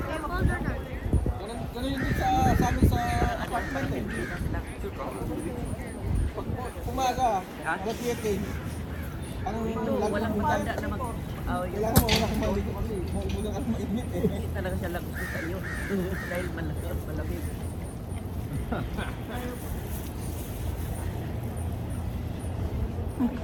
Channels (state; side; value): identical; both; correlation 1.00